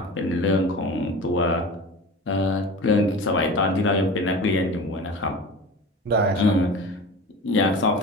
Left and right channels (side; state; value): both; normal; correlation 0.34